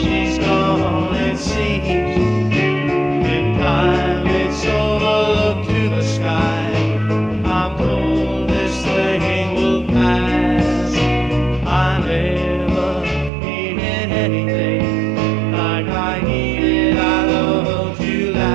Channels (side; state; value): left; drops out; at 13.3 s